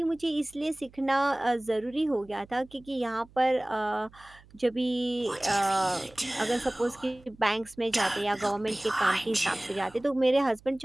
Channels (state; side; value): noise; right; hum, 25 dB below the sound